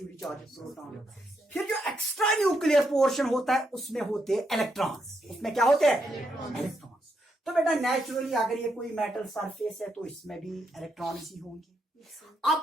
चार्ज प्रोटॉन। फिर जो एक्स्ट्रा न्यूक्लियर पोर्शन होता है उसमें होते हैं इलेक्ट्रॉन्स। उसमें क्या होते हैं? इलेक्ट्रॉन्स। तो बेटा नेचुरली अगर ये कोई मेटल सरफेस है तो इसमें भी इलेक्ट्रॉन्स ही होंगे।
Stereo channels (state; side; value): normal; both; correlation 0.80